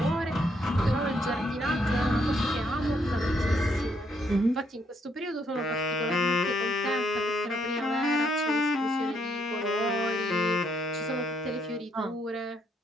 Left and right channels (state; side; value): normal; both; correlation 0.72